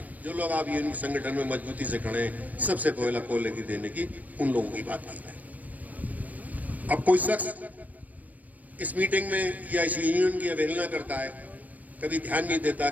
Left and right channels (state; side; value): late; left; 0.075 ms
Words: जो लोग आप यूनियन संगठन में मजबूती से खड़े हैं, सबसे पहला कोयले की देने की उन लोगों की बात की है। अब कोई शख्स इस मीटिंग में या इस यूनियन की अवहेलना करता है, कभी ध्यान नहीं देता,